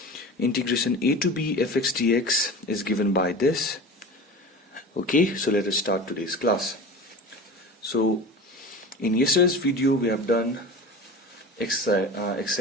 integration a to b fx dx is given by this. Okay, so let us start today's class. So in yesterday's video we have done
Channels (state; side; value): normal; both; correlation 0.34